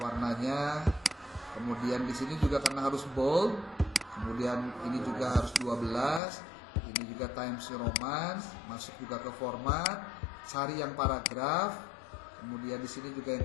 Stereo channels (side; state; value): right; drops out; at 6.2 s